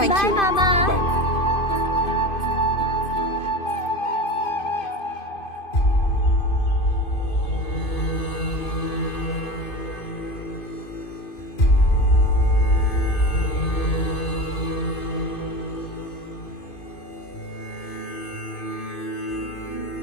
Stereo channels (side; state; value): right; late; 2.5 ms